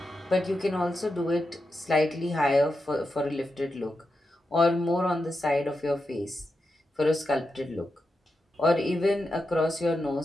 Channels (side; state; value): both; normal; correlation 0.88